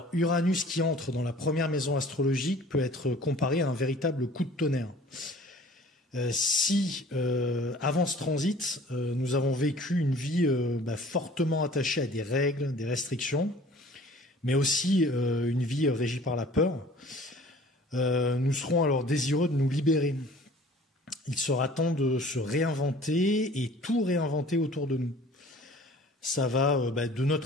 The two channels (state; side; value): normal; both; correlation 0.49